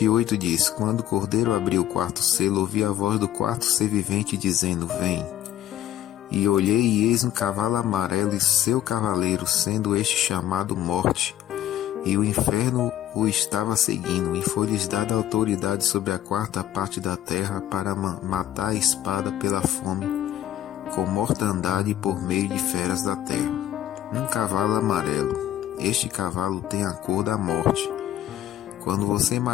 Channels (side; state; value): right; quieter; 12.2 dB